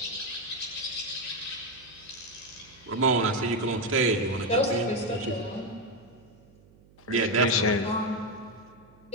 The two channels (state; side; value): noise; right; hum, 27 dB below the sound